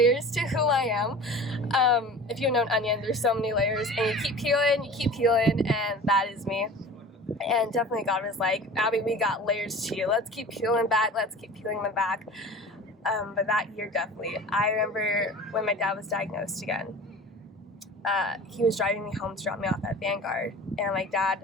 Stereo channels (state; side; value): normal; both; correlation 0.39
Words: to who I am. If you know an onion, there's so many layers, and you keep peeling, and that is me. And definitely God was like, Abby, we got layers to you. Let's keep peeling back. Let's keep peeling them back. But that year, definitely. I remember when my dad was diagnosed again. He was driving me home to drop me off at Vanguard. And I'm like, Dad,